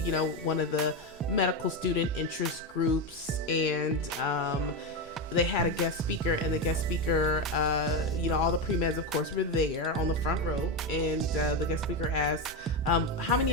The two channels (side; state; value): both; normal; correlation 0.12